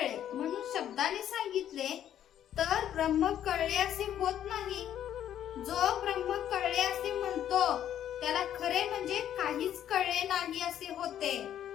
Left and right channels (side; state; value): right; quieter; 10.7 dB